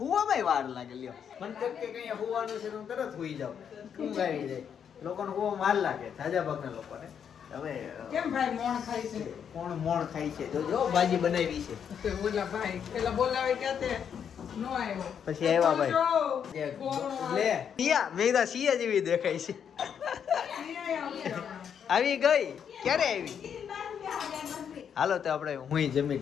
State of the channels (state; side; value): quieter; right; 7.9 dB